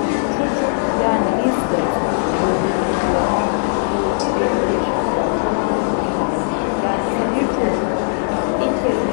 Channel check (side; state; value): right; silent; digital silence